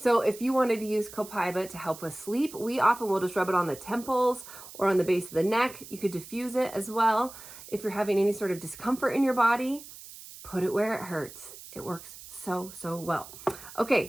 if you wanted to use Copaiba to help with sleep, we often will just rub it on the temples or on the base of the neck. You could diffuse it as well. If you're having any sort of discomfort in your body, put it where it hurts. It works so, so well.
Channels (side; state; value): right; noise; hiss, 16 dB below the sound